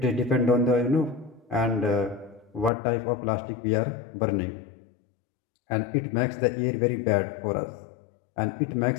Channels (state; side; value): drops out; right; at 2.7 s